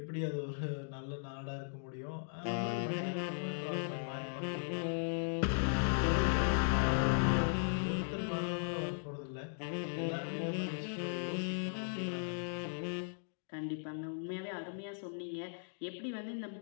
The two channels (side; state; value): right; silent; digital silence